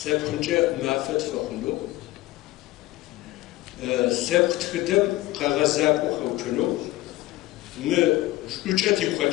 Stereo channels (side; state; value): right; quieter; 17.6 dB